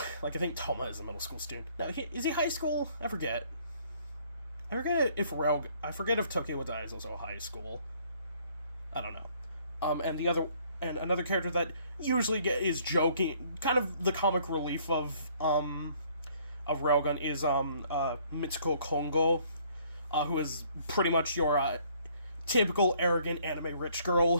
Like, I think Toma is a middle school student. Now, is he high school? I forget. I forget if Tokyo wa Dai is also high school. I don't know. And another character that usually is joking, kind of the comic relief of Railgun is Mitsuko Kongo, who is pretty much your typical arrogant anime rich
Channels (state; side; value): inverted; both; correlation -0.62